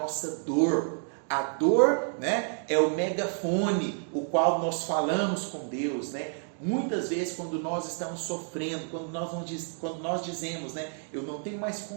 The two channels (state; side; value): silent; left; 58 dB below the other